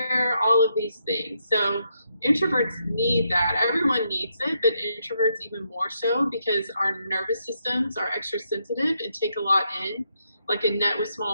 all of these things. So introverts need that. Everyone needs it, but introverts even more so, because our nervous systems are extra sensitive and take a lot in, like a net with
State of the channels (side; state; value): both; inverted; correlation -0.79